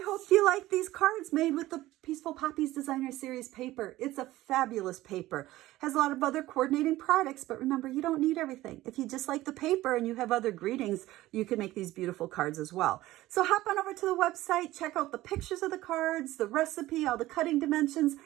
hope you like these cards made with the Peaceful Poppies Designer Series paper. It's a fabulous paper. Has a lot of other coordinating products, but remember, you don't need everything. If you just like the paper and you have other greetings, you can make these beautiful cards as well. So hop on over to the website, check out the pictures of the cards, the recipe, all the cutting dimensions,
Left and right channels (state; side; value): quieter; left; 16.6 dB